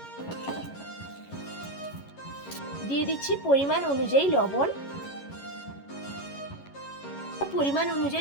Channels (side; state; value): right; late; 11 ms